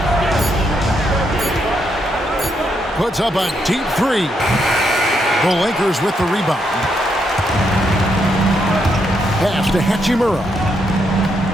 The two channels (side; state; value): both; normal; correlation 0.78